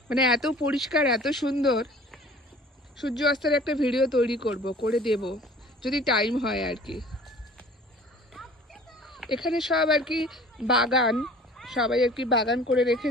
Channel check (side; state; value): both; normal; correlation 0.48